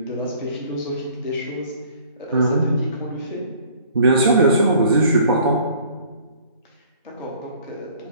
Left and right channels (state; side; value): inverted; both; correlation -0.54